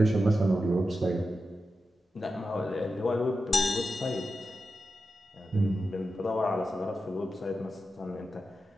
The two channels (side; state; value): both; normal; correlation 0.90